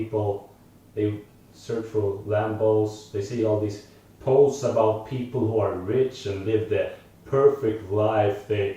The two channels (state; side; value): identical; both; correlation 1.00